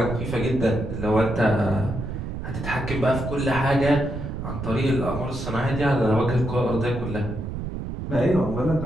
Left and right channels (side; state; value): right; noise; rumble, 6 dB below the sound